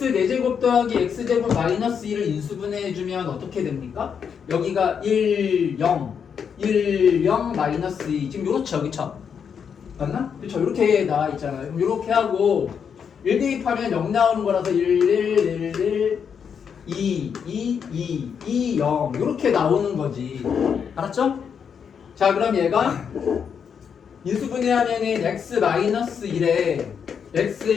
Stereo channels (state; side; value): quieter; right; 7.1 dB